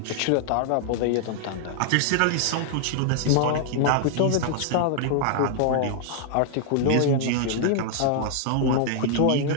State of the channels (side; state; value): both; different; correlation -0.01